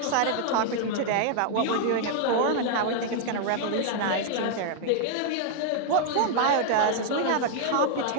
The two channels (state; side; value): different; both; correlation 0.00